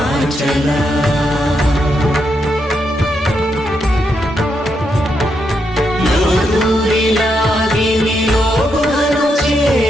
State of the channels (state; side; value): normal; both; correlation 0.81